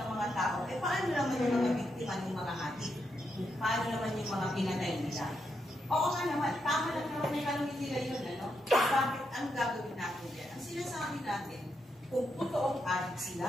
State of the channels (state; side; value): normal; both; correlation 0.82